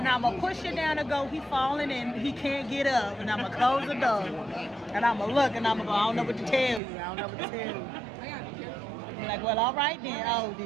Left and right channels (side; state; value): left; drops out; at 6.8 s